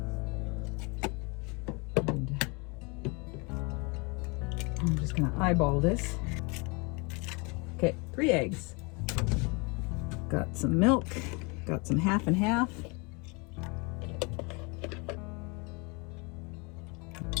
And I'm just gonna eyeball this. Okay, 3 eggs. Got some milk, got some half and half.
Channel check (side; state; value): right; quieter; 30.0 dB